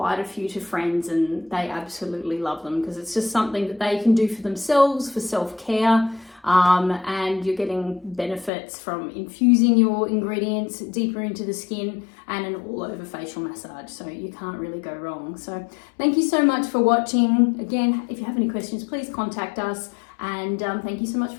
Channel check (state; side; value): drops out; right; at 8.5 s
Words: a few to friends and they absolutely love them because it's just something that they can do for themselves, for self-care. And you're getting benefits from infusing your ingredients deeper into the skin and an all-over facial massage, so you can't really go wrong. So thank you so much for watching. Again, if you have any questions, please contact us, and thank you so much